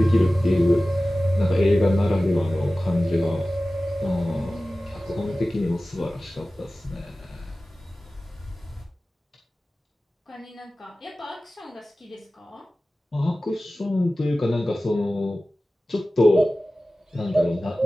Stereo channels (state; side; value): normal; both; correlation 0.96